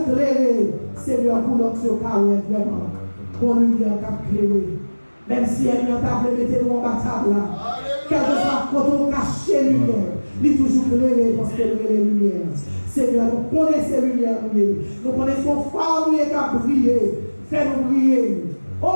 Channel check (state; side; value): inverted; both; correlation -1.00